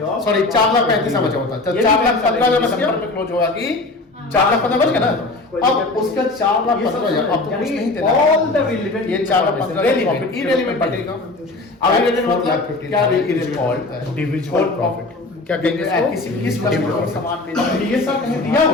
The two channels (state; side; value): quieter; right; 3.2 dB